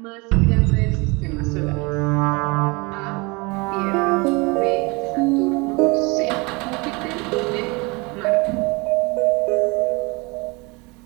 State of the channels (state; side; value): quieter; left; 27.0 dB